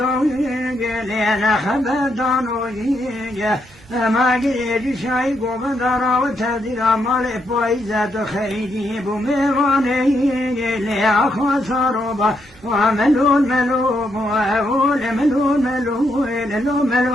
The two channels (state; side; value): normal; both; correlation 0.78